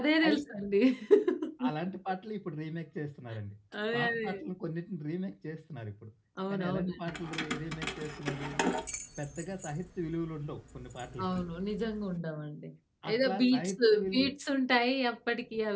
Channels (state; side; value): identical; both; correlation 1.00